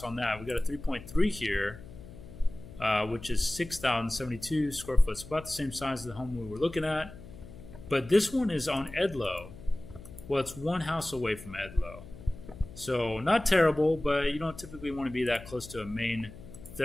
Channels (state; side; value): noise; left; hum, 16 dB below the sound